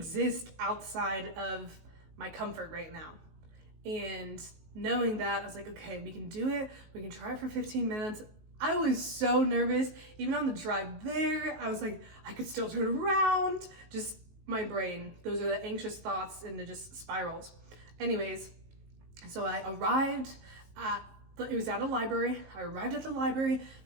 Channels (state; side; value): late; left; 19 ms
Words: outside of my comfort right now. And knowing that, I was like, okay, we can do it. We can try it for 15 minutes. I was so nervous. Even on the drive there, I was like, I could still turn around. Just my brain. Those are the anxious thoughts and it just spirals. Anyways, so I arrived at, it was at a library. I arrived at the library and